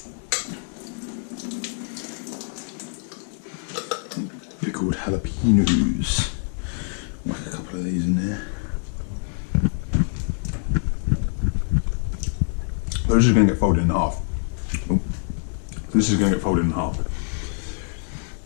Pickled jalapenos. Whack a couple of these in there. So this is going to get folded in half. Oh. This is going to get folded in half.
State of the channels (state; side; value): silent; right; 62 dB below the other